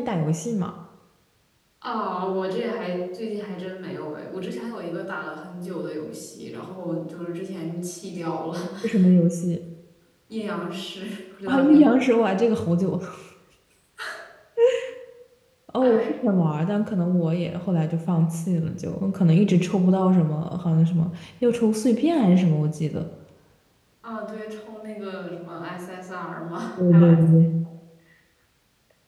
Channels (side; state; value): both; identical; correlation 1.00